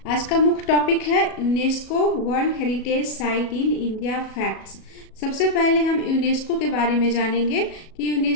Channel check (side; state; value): right; late; 37 ms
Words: आज का मुख्य टॉपिक है UNESCO world heritage site in India facts. सबसे पहले हम यूनेस्को के बारे में जानेंगे कि